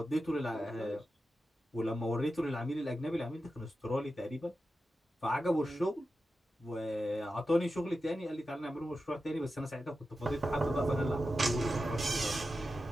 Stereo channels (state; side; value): normal; both; correlation 0.91